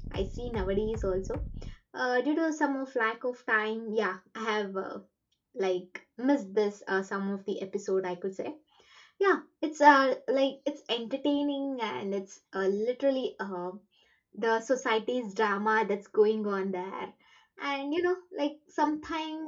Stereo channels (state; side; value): identical; both; correlation 1.00